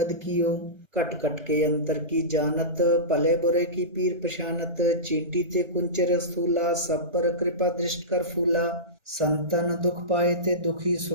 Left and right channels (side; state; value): left; late; 1.4 ms